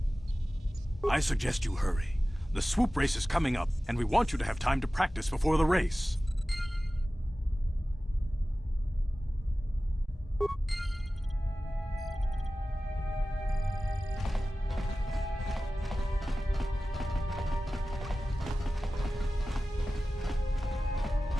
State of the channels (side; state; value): both; normal; correlation 0.96